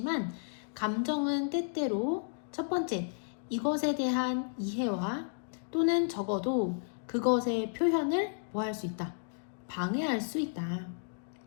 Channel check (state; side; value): silent; right; digital silence